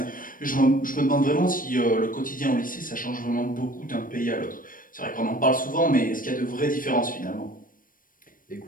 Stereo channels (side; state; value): right; late; 0.40 ms